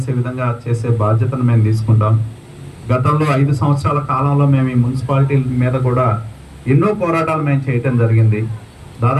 విధంగా చేసే బాధ్యతను మేము తీసుకుంటాం. గతంలో 5 సంవత్సరాల కాలంలో మేము ఈ మున్సిపాలిటీ మీద కూడా ఎన్నో పోరాటాలు మేము చేయటం జరిగింది.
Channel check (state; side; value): identical; both; correlation 1.00